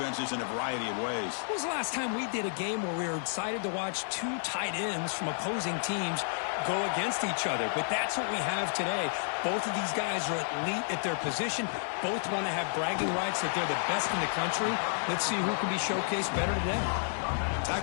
in a variety of ways. When was the last time we did a game where we were excited to watch 2 tight ends from opposing teams go against each other? But that's what we have today. Both of these guys are elite at their position. Both want to have bragging rights that they're the best in the country. Let's see who can be showcased better today.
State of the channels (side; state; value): right; silent; 57 dB below the other